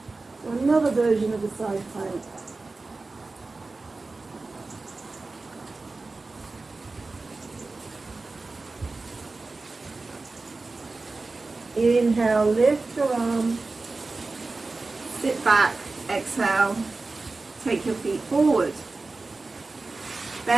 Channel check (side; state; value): left; quieter; 3.6 dB